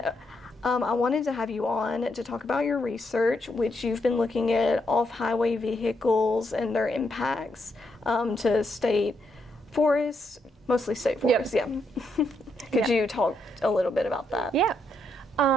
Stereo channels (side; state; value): both; normal; correlation 0.78